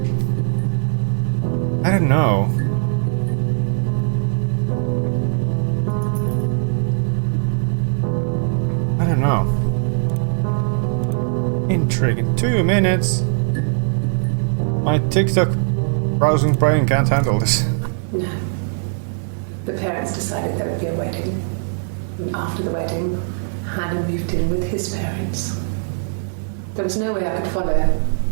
I don't know. I don't know. Intriguing. 2 minutes. My TikTok browsing brain can't handle this. No. The parents decided there would be a wedding. And after the wedding, Hannah moved in with his parents. There was no way I could follow,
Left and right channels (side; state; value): left; silent; digital silence